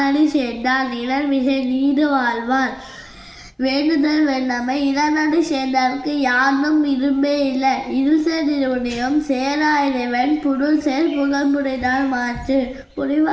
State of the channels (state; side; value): identical; both; correlation 1.00